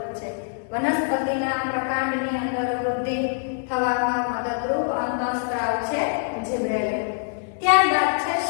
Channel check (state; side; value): silent; right; 59 dB below the other